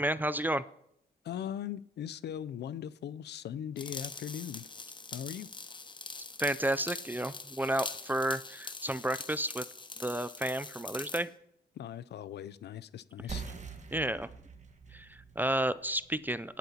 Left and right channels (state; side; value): normal; both; correlation 0.57